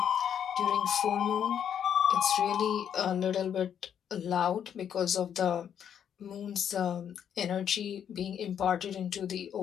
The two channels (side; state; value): right; quieter; 8.8 dB